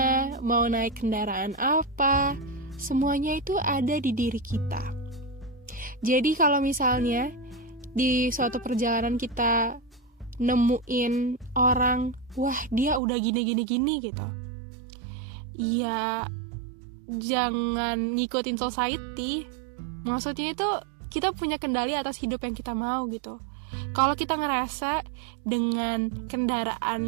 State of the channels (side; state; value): left; drops out; at 13.0 s